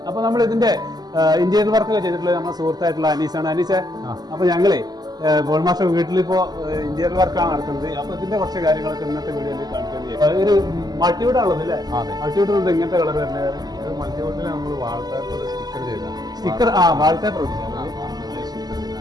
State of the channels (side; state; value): left; late; 0.20 ms